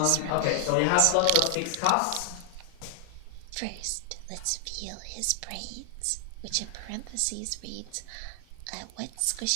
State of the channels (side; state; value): both; different; correlation 0.00